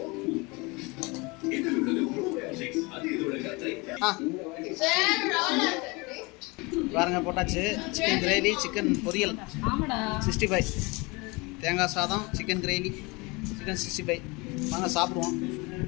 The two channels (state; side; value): quieter; right; 26.1 dB